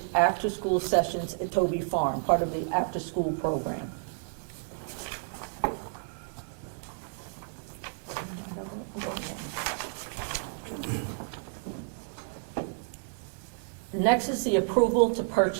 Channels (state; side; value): silent; left; digital silence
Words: after-school sessions at Toby Farm, part of the after-school program. Next is the approval to